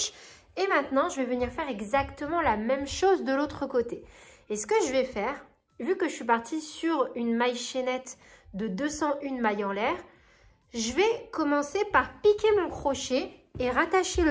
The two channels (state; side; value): identical; both; correlation 1.00